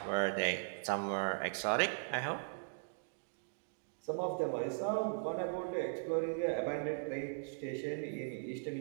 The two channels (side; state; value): left; silent; digital silence